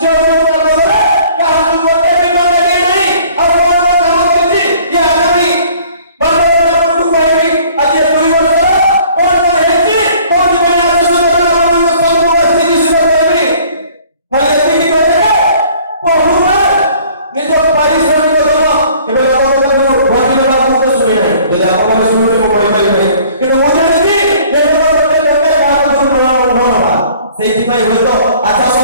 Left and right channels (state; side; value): inverted; both; correlation -0.54